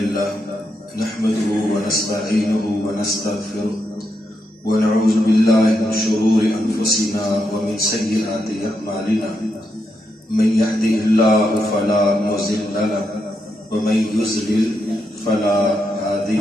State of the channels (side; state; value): both; normal; correlation 0.82